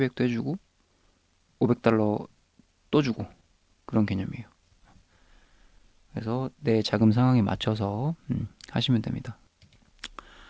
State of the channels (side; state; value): both; identical; correlation 1.00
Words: 해주고 500달러 또 주고 그런 개념이에요. 그래서 내 자금 상황에 맞춰서 하시면 됩니다.